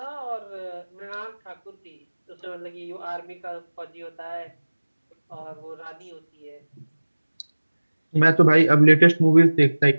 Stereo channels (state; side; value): inverted; both; correlation -1.00